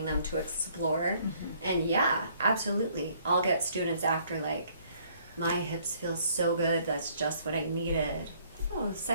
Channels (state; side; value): inverted; both; correlation -0.62